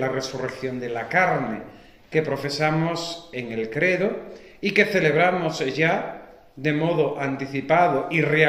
resurrección de la carne, que profesamos en el credo y que celebramos ya de modo anticipado y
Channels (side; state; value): both; identical; correlation 1.00